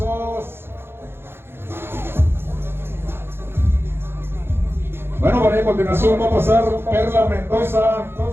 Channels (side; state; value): left; late; 0.11 ms